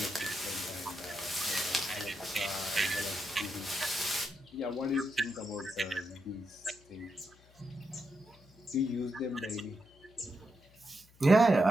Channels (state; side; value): noise; left; hum, 27 dB below the sound